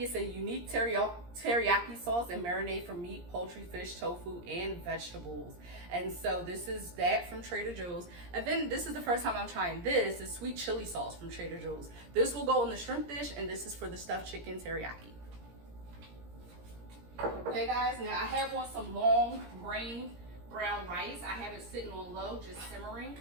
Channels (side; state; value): left; late; 17 ms